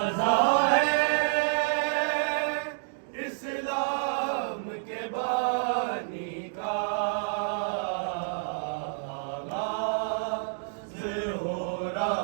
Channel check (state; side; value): silent; left; digital silence